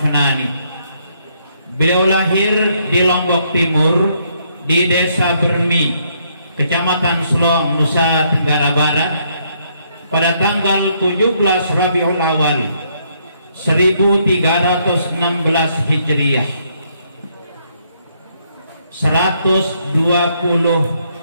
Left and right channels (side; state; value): both; inverted; correlation -0.72